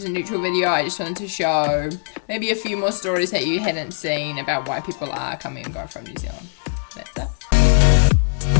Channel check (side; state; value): right; silent; digital silence